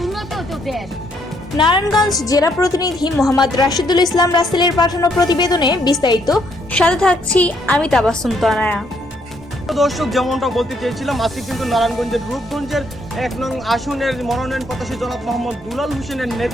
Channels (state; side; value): normal; both; correlation 0.71